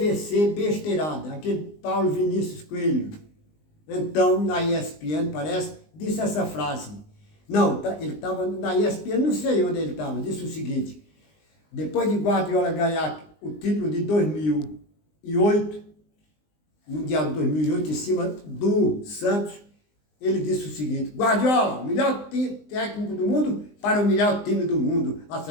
Besteirada, aquele Paulo Vinícius Coelho. Então, na ESPN, parece, disse essa frase. Não, ele estava na ESPN, não sei onde ele estava, disse o seguinte: depois de Guardiola ganhar o título de 2008, Mundial de 2008, em cima do Santos, ele disse o seguinte: Guardiola, melhor técnico do mundo para o melhor time do mundo, a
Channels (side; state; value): right; late; 19 ms